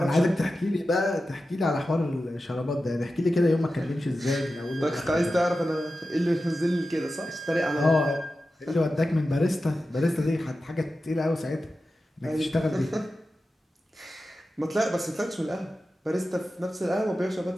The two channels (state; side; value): normal; both; correlation 0.92